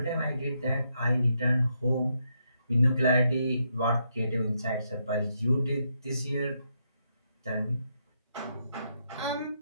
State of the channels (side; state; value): both; inverted; correlation -0.79